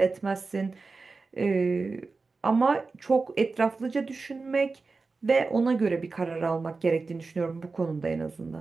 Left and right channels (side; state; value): left; quieter; 4.1 dB